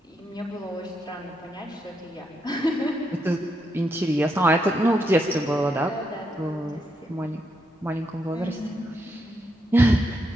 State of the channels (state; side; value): normal; both; correlation 0.80